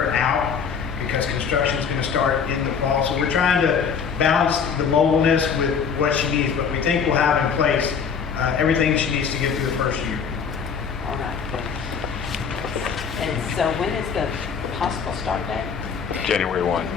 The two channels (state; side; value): quieter; right; 6.5 dB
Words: out because construction is going to start in the fall. So we're trying to balance the mobileness with what she needs, but we think we'll have in place everything she needs to get through the first year. All right. And so when is the possible start date? January 1,